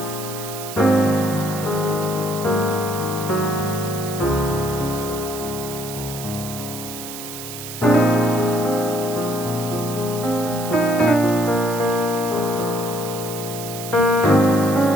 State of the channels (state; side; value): noise; right; hiss, 10 dB below the sound